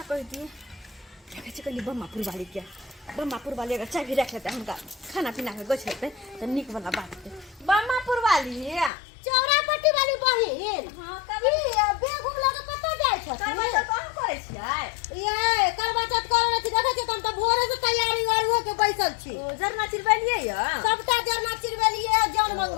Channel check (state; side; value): drops out; right; at 8.9 s